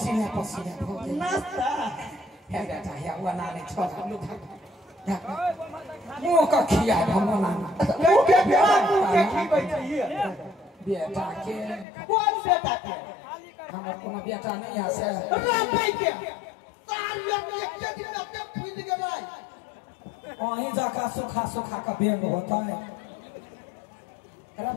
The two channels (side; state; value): right; drops out; at 11.9 s